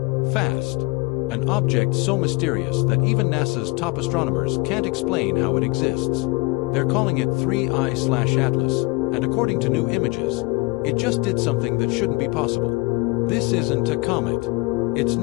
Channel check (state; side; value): quieter; right; 26.0 dB